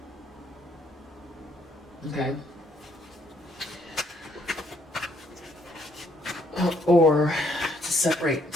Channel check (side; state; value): both; normal; correlation 0.69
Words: Okay. Or to separate